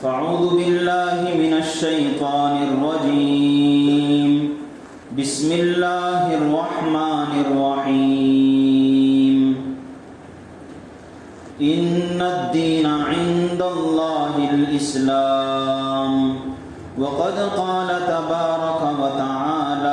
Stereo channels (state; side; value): identical; both; correlation 1.00